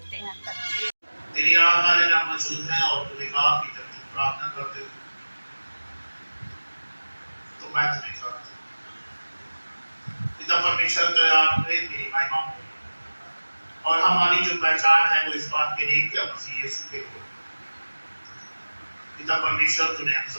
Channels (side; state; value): both; inverted; correlation -1.00